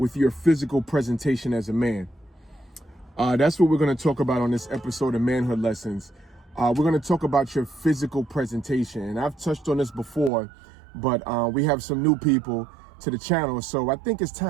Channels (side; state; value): left; drops out; at 10.3 s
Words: your physical presentation as a man? That's what we're going to talk about on this episode of Manhood Lessons. We're going to talk about your physical presentation. And I've touched on this before, but we have some new people to the channel. So I think it's